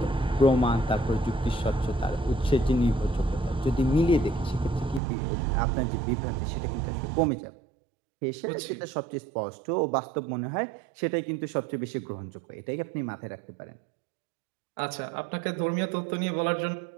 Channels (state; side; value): drops out; left; at 5.0 s